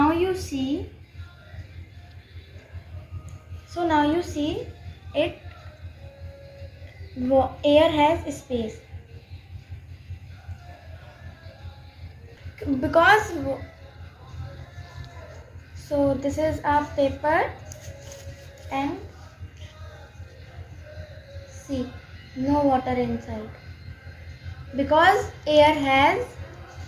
you see it air has space because so this is a paper and see no water inside because air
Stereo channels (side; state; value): both; identical; correlation 1.00